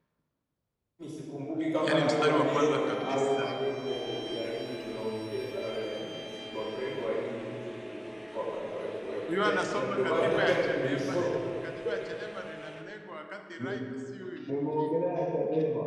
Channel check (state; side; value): identical; both; correlation 1.00